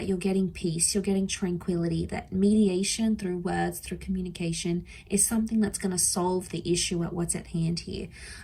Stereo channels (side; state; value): both; identical; correlation 1.00